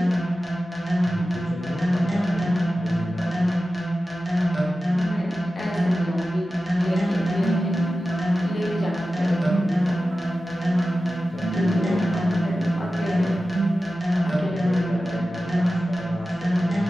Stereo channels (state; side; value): normal; both; correlation 0.94